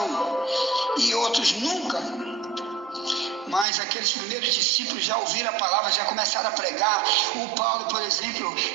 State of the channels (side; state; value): left; drops out; at 3.7 s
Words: e outros nunca. Mas aqueles primeiros discípulos já ouviram a palavra, já começaram a pregar. O Paulo, por exemplo,